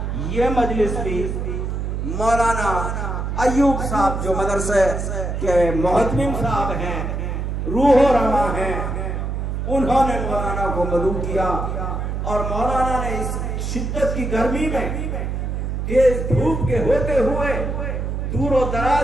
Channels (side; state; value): right; noise; hum, 3 dB below the sound